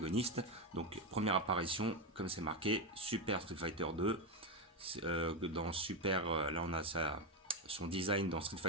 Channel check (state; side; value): normal; both; correlation 0.11